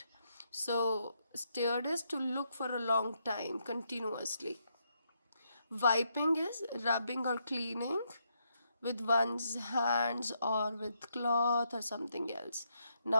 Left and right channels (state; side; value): inverted; both; correlation -0.78